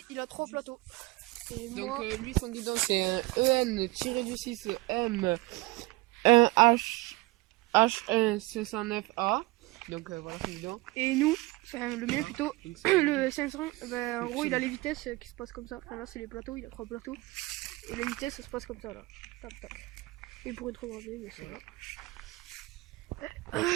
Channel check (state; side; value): quieter; left; 22.1 dB